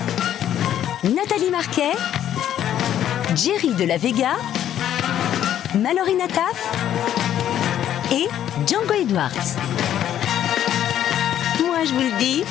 Nathalie Marquet, Jerry de la Vega, Mallory Nataf et Django Edwards. Moi, je vous le dis,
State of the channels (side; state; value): right; quieter; 10.9 dB